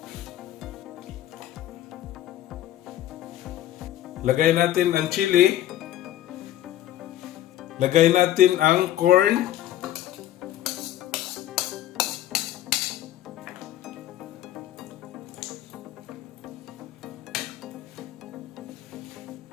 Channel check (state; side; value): quieter; right; 13.2 dB